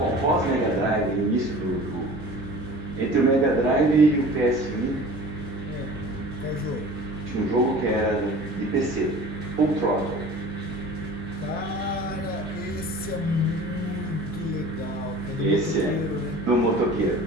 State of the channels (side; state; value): both; normal; correlation 0.42